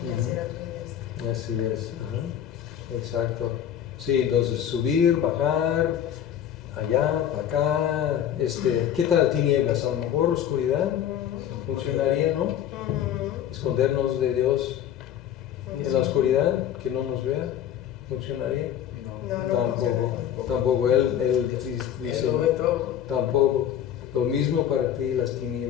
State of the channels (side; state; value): right; quieter; 10.1 dB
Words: y hacer a tu diestra. Así es. Ajá. Exacto. Sí, entonces subir, bajar, allá, para acá. ¿Qué tal tinieblas? A lo mejor oscuridad funcionaría, ¿no? Escondernos de Dios en la oscuridad, que no nos vea, funcionaría. No, Tampoco. Él dice, Él lo ve todo. tampoco. Lo mismo para ti las